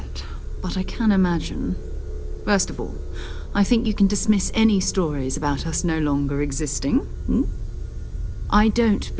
but I can imagine. First of all, I think you can dismiss any stories about us no longer existing. I don't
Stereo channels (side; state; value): both; identical; correlation 1.00